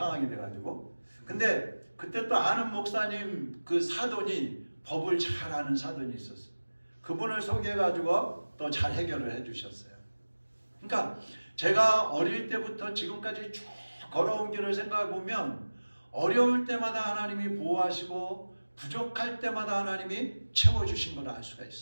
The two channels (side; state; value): both; inverted; correlation -1.00